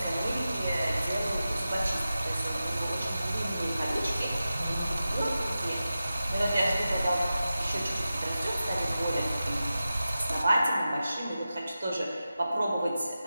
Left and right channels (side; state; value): both; inverted; correlation -0.93